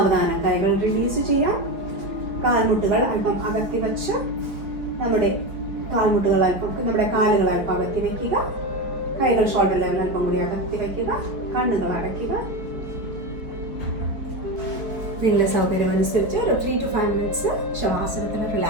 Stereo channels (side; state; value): left; late; 4.5 ms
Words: കൈകൾ റിലീസ് ചെയ്യാം. കാൽമുട്ടുകൾ അല്പം അകത്തി വച്ച് നമ്മുടെ കാലുകൾ അല്പം അകത്തി വയ്ക്കുക. കൈകൾ ഷോൾഡർ ലെവൽ അല്പം കൂടി അകത്തി വയ്ക്കുക. കണ്ണുകൾ അടയ്ക്കുക. നിങ്ങളുടെ സൗകര്യം അനുസരിച്ച് ഒരു 3 to 5 മിനിറ്റ്സ് ശവാസനത്തിൽ